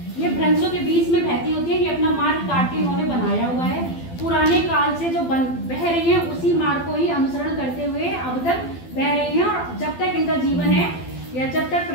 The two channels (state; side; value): late; right; 12 ms